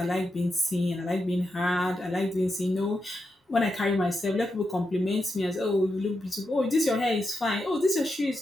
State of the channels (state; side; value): normal; both; correlation 0.86